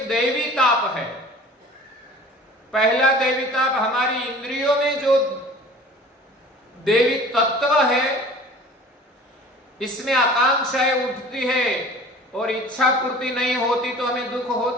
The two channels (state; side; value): normal; both; correlation 0.45